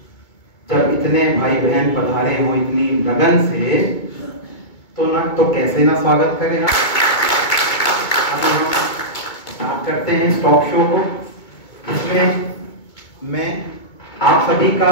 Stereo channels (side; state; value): right; late; 2.2 ms